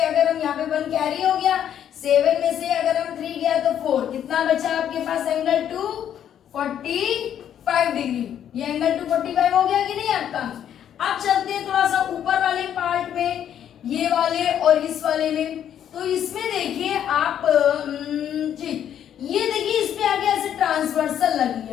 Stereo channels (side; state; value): right; quieter; 9.8 dB